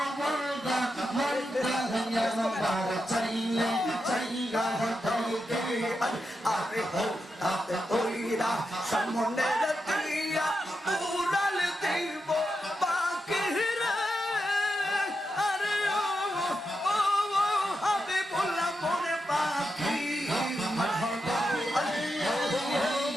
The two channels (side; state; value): both; normal; correlation 0.87